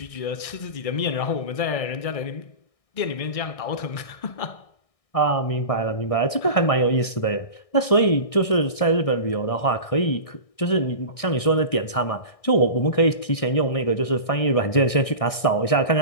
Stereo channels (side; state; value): right; late; 1.6 ms